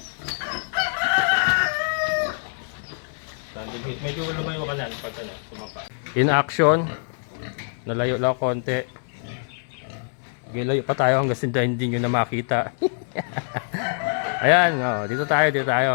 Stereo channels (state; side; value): silent; right; digital silence